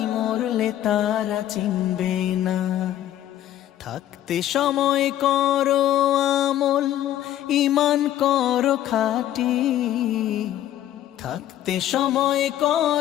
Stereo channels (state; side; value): quieter; right; 12.3 dB